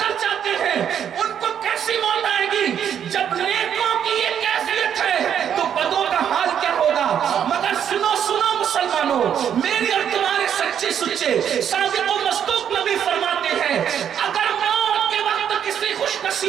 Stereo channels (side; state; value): left; quieter; 8.8 dB